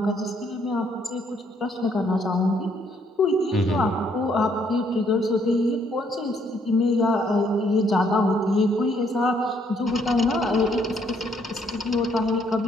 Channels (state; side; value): normal; both; correlation 0.69